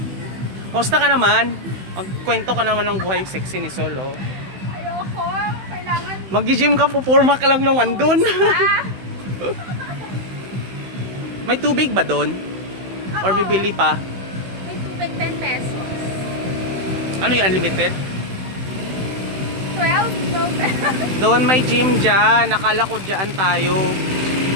Kumusta ka naman? Magkwento ka naman ng buhay sexy ni Sol, oh. Ayoko. Kailangan... Mag-gym ka, pupurma ka lang naman dun. Ah! May tubig ba dun? Or bibili pa? May tubig 10 pesos. Ano yung unlimited? 12 pesos. Doon may gym dyan. Nakala ko dyan tayo.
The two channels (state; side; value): late; left; 16 ms